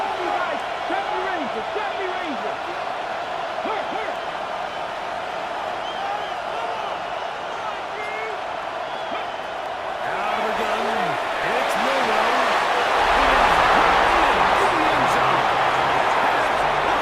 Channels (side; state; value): both; identical; correlation 1.00